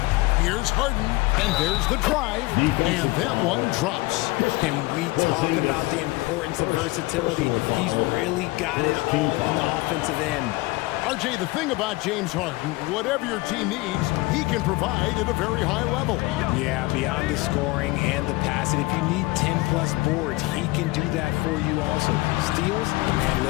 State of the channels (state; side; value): quieter; right; 21.8 dB